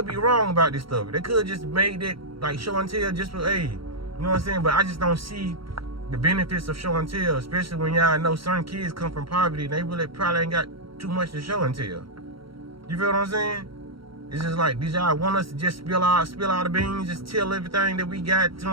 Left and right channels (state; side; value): late; left; 0.74 ms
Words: be wrong about this stuff. They could just made it like show and tell just for, hey, you know what I'm saying? But I just don't see the benefits of show and tell, especially when y'all know certain kids come from poverty and they really probably ain't got too much to show and tell. You feel what I'm saying? It's just like, did y'all want us to just spill all the beans, just tell everything that we got, you know